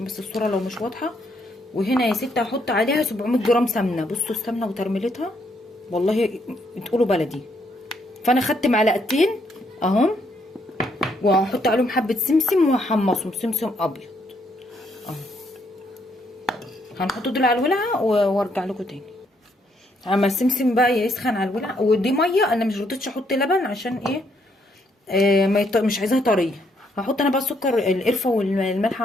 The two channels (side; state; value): both; normal; correlation 0.73